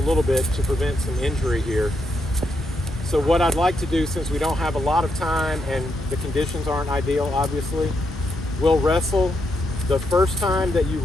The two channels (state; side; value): normal; both; correlation 0.80